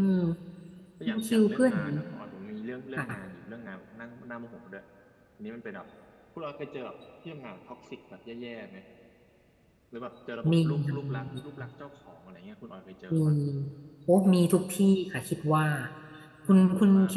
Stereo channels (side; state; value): both; identical; correlation 1.00